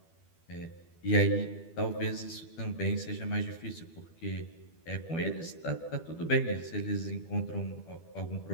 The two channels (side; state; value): right; late; 12 ms